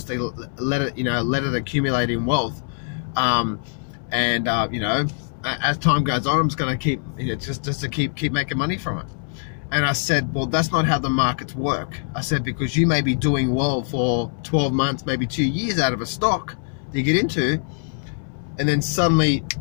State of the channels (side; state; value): right; silent; 63 dB below the other